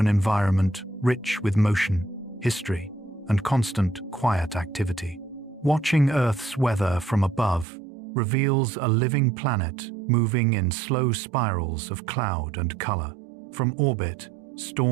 environment rich with motion, history, and constant, quiet activity. Watching Earth's weather from above reveals a living planet moving in slow spirals of cloud and color. From orbit,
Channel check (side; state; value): left; drops out; at 7.7 s